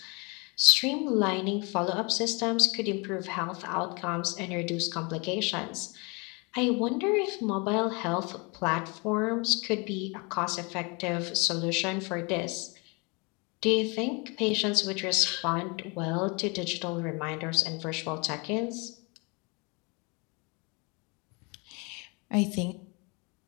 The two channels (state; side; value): quieter; right; 30.0 dB